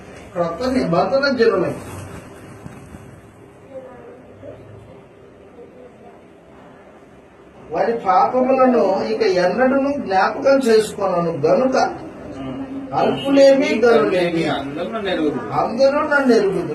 క్రొత్త నిబంధన జనులై. వారి పాపములను ఇక ఎన్నడూ జ్ఞాపకం చేసుకున్నాను గనుక అల్పులేమి గనులేమి అందరూ నన్ను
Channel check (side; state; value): both; identical; correlation 1.00